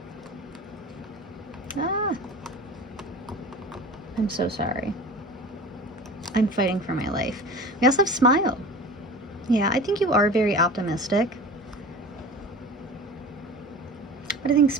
Ah, I'm so sorry. I'm fighting for my life. We also have Smile. Yeah, I think you are very optimistic. But I think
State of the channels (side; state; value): both; normal; correlation 0.37